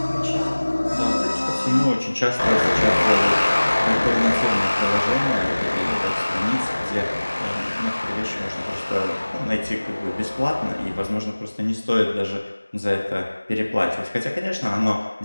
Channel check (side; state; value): both; inverted; correlation -1.00